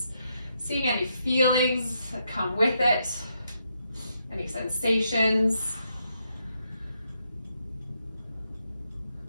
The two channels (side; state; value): both; inverted; correlation -0.79